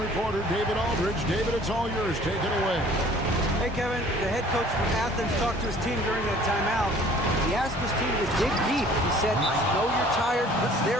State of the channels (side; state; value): both; normal; correlation 0.52